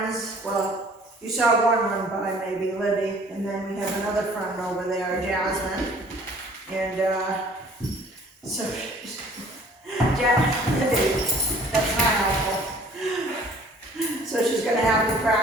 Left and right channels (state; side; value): normal; both; correlation 0.53